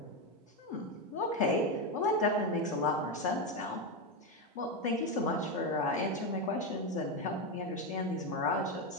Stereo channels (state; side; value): normal; both; correlation 0.10